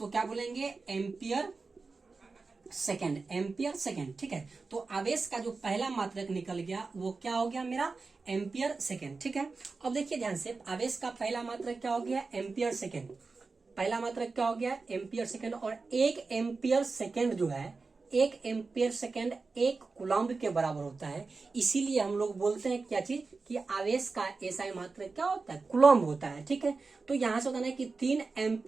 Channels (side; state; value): left; quieter; 4.1 dB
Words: क्या बोलेंगे, एम्पियर सेकेंड, एम्पियर सेकेंड। ठीक है, तो आवेश का जो पहला मात्रक निकल गया वो क्या हो गया मेरा, एम्पियर सेकेंड। ठीक है, अब देखिए ध्यान से, आवेश का पहला मात्रक क्या हो गया, एम्पियर सेकेंड, पहला मात्रक क्या हो गया, एम्पियर सेकेंड। और एक एम्पियर सेकेंड जो है, एक एम्पियर सेकेंड एक कूलम्ब के बराबर होता है, इसीलिए हम लोग बोलते हैं क्या चीज, कि आवेश का एसआई मात्रक क्या होता है, कूलम्ब होता है। ठीक है, तो यहाँ से बताना है कि 3